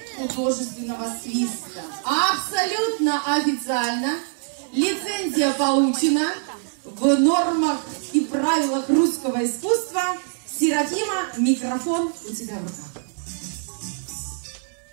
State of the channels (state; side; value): silent; left; 63 dB below the other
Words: художественного свиста. Абсолютно официально лицензия получена в нормах и правилах русского искусства. Серафима, микрофон у тебя в руках.